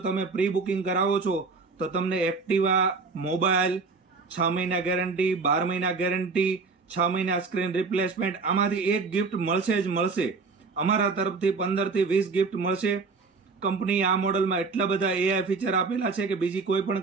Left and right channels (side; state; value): left; quieter; 4.4 dB